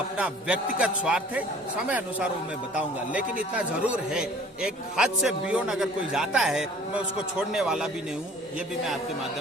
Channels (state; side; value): normal; both; correlation 0.50